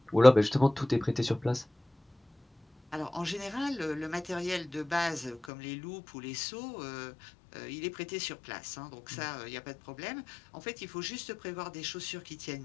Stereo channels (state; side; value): drops out; right; at 5.5 s